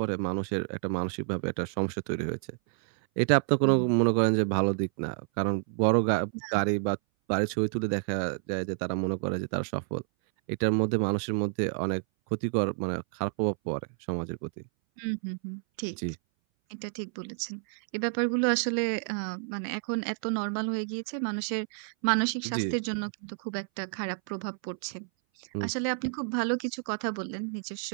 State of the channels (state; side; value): silent; left; 58 dB below the other